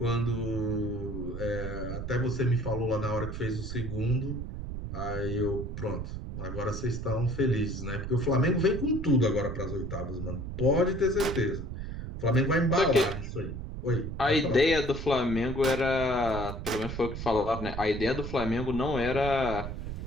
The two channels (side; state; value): right; noise; rumble, 6 dB below the sound